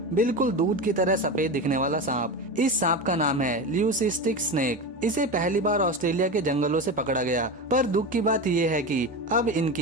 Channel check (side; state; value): both; normal; correlation 0.22